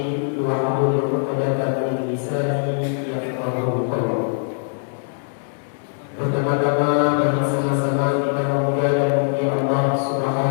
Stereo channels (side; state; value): right; silent; digital silence